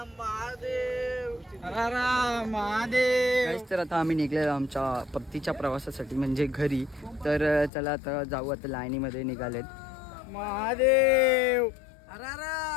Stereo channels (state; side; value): drops out; right; at 7.7 s